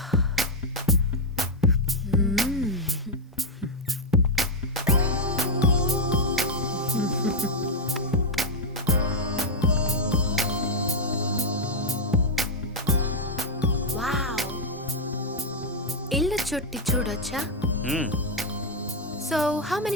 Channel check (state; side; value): normal; both; correlation 0.00